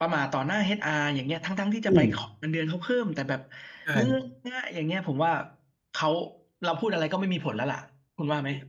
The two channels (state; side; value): identical; both; correlation 1.00